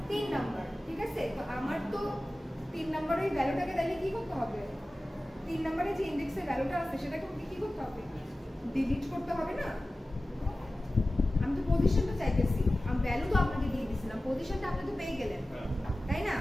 3 নাম্বার, ঠিক আছে। তো আমার তো 3 নাম্বারের ওই ভ্যালুটাকে তাহলে কি করতে হবে? 3 নাম্বারে যে ইনডেক্সে ভ্যালুটা আছে সেটাকে কি করতে হবে? ডিলিট করতে হবে না? আমি তো পজিশনটা চাইতেছি, আমি ভ্যালু তো আপনাকে দিয়ে দিয়েছিলাম, পজিশনটা আপনি তো পেয়ে গেলেন, তাই না?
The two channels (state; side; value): normal; both; correlation 0.96